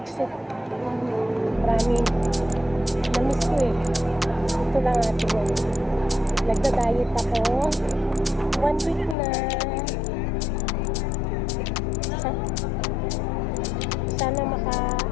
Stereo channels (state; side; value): drops out; right; at 9.2 s